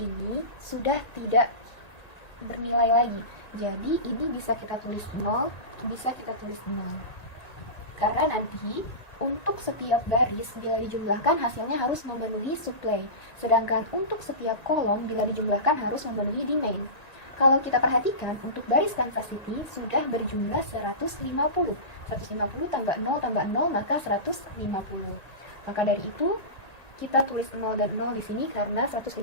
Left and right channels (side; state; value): right; late; 1.9 ms